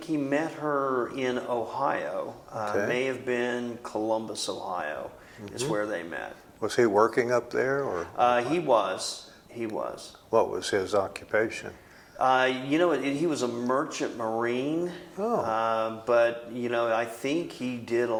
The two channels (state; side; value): identical; both; correlation 1.00